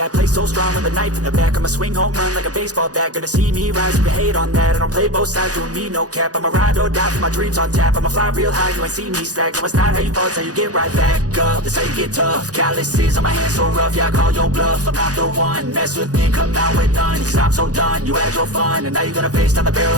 I play so strong with a knife in the back. I'ma swing home run like a baseball bat. Gonna see me rise, you can hate on that. I don't play both sides, doing me no cap. I'ma ride or die for my dreams on tap. I'ma fly real high, you ain't see me slack. No, it's not how you fall, it's how you get right back up. That's how you get tough. Calluses on my hands so rough, yeah, I call your bluff. I'm not the one, mess with me and come out with none. Cause I'm so done, you had your fun. And now you're gonna face down the barrel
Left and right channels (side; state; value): left; late; 0.67 ms